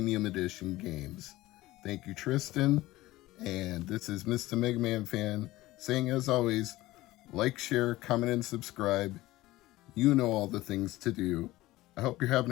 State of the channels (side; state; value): right; quieter; 17.7 dB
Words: Edition Games. Thank you, Tristan. And this is Mr. MegaManFan saying, as always, like, share, comment, and subscribe. You know all the things to do. I hope you're